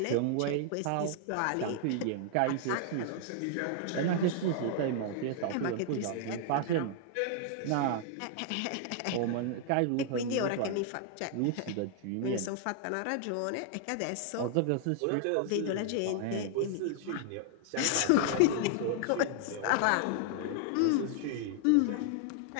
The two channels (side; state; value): both; different; correlation 0.00